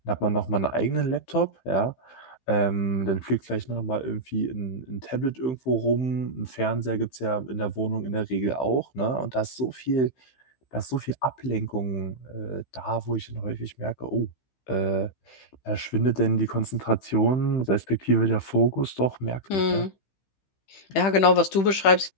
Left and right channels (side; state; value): right; late; 15 ms